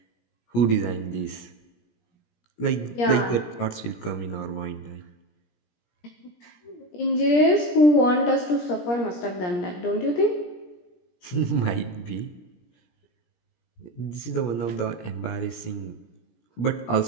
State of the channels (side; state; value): right; late; 17 ms